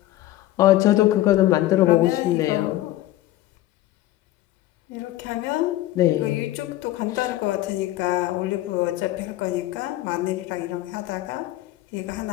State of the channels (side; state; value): right; quieter; 15.4 dB